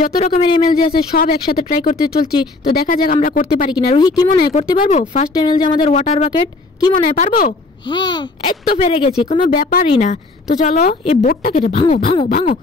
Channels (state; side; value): quieter; right; 3.5 dB